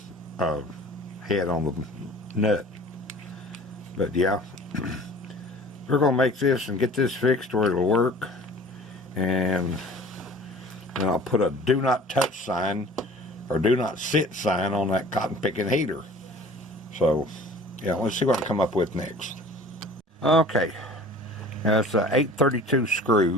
head on the nut. But yeah, we're going to make this and get this fixed where it'll work. And then I'll put a do not touch sign or do not sit sign on that cotton picking heater. So yeah, let's see what I come up with next. Okay, that's a 832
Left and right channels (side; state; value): both; normal; correlation 0.45